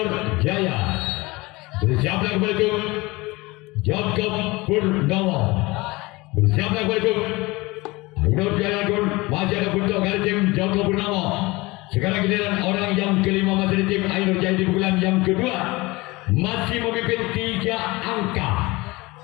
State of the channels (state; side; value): quieter; right; 22.5 dB